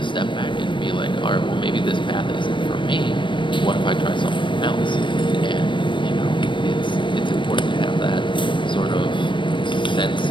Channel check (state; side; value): late; right; 0.24 ms